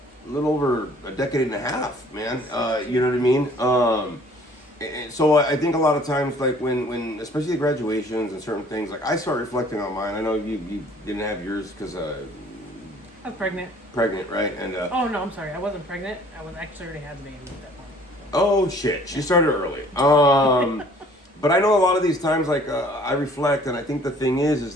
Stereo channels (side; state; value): both; normal; correlation 0.55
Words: a little over a decade and a half, man. You know what I mean? And so I think a lot of times, like when especially graduations and certain things, like I start reflecting on mine. I know you didn't have yours because I was pregnant. pregnant, right? And Oh no, I'm sorry. I wasn't pregnant. I was actually already had the baby at that point. oh shit, she started early. But I know a lot of these times, like I reflect, and I think the thing